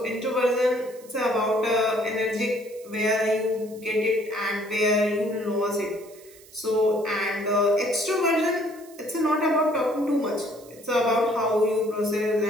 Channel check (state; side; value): noise; right; hiss, 23 dB below the sound